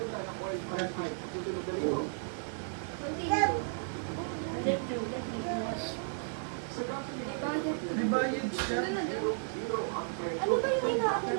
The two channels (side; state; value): left; silent; digital silence